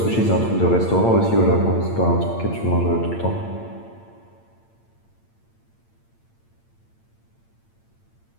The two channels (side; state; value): right; late; 8.8 ms